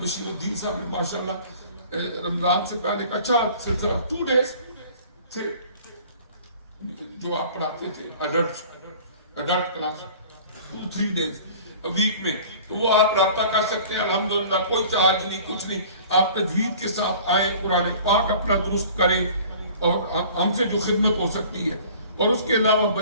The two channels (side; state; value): both; inverted; correlation -0.46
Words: بشیر الدین صاحب نے ماشاءاللہ رمضان سے پہلے ایک اچھا سلسلہ 2 days تھے جو آپ پڑھاتے تھے ایڈلٹ کلاس 2-3 days ویک میں, تو وہ آپ رابطہ کر سکتے ہیں. الحمدللہ کوئی چارج نہیں, کچھ نہیں. آپ تجوید کے ساتھ آئیں, قرآن پاک اپنا درست کریں اور ہم سے جو خدمت ہو سکتی ہے. اور اس کے علاوہ